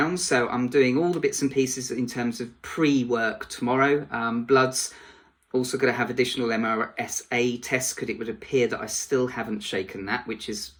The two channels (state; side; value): identical; both; correlation 1.00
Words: so I'm doing all the bits and pieces in terms of pre-work tomorrow. Bloods, also going to have additional MRSA tests because it would appear that I still haven't shaken that, which is